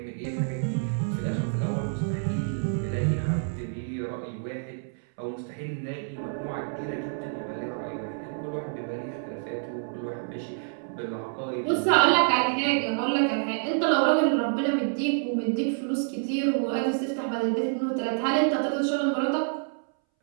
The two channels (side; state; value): left; silent; 60 dB below the other